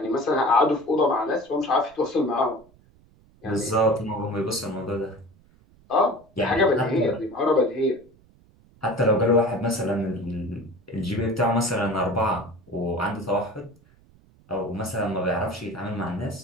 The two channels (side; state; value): right; noise; rumble, 29 dB below the sound